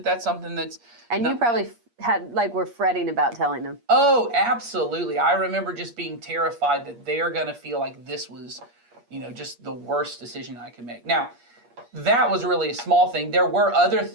that's something that's... And you probably were fretting about telling them. Oh, absolutely. I remember just being terrified that they're going to feel like this was, just the worst decision I could make. Now, that was really a small thing. There were other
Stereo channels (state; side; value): late; left; 8.5 ms